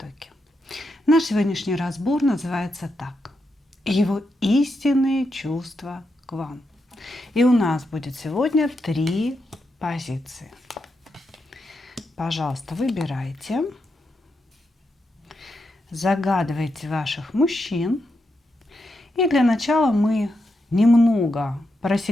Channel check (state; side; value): normal; both; correlation 0.84